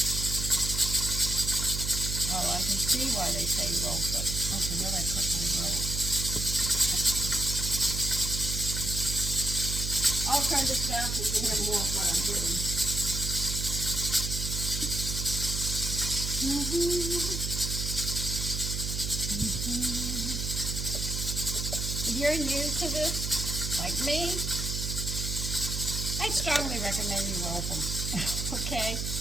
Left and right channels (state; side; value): noise; right; hum, 3 dB below the sound